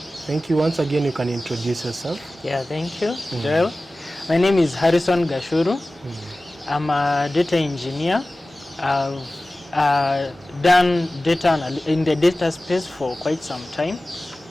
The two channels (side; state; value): both; normal; correlation 0.97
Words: Thank you once again. You can introduce yourself. Yeah, thank you, Joel. My name is Harrison Gachuru. I'm a data engineer. I've done data in the data space for quite some time.